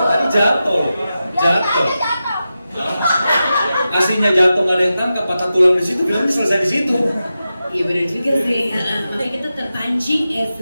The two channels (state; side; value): inverted; both; correlation -0.91